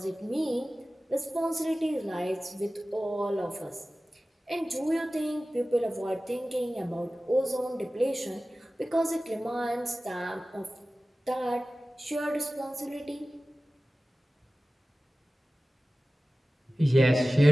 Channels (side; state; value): both; normal; correlation 0.96